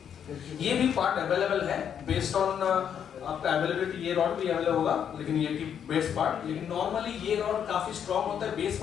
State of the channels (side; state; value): right; quieter; 8.5 dB